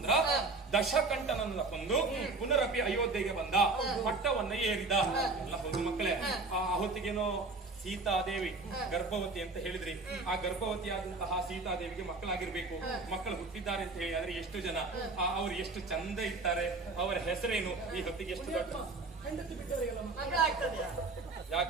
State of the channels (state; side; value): quieter; left; 3.6 dB